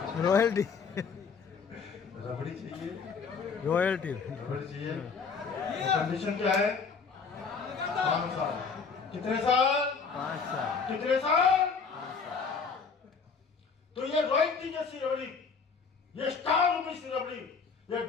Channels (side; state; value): right; quieter; 5.3 dB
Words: रॉयल्टी, रबड़ी चाहिए, रॉयल्टी, रबड़ी चाहिए। कंडीशन क्या है? 5 साल। कितने साल? 5 साल। कितने साल? तो ये रॉयल्टी जैसी रबड़ी, ये स्टार मूवी सी रबड़ी, ये